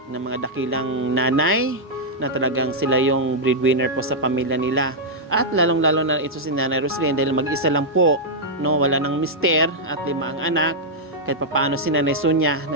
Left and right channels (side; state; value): both; normal; correlation -0.06